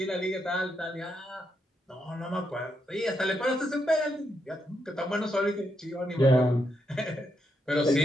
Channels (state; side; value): normal; both; correlation 0.81